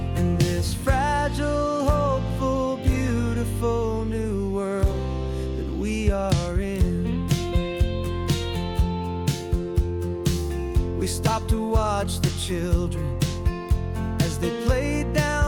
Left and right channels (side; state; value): both; identical; correlation 1.00